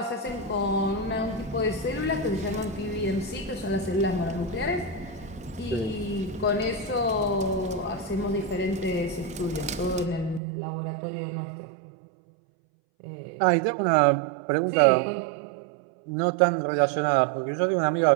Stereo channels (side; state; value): left; drops out; at 10.4 s